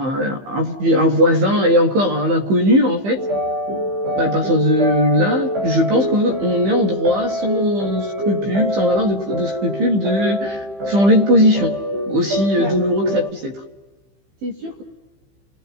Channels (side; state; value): left; late; 15 ms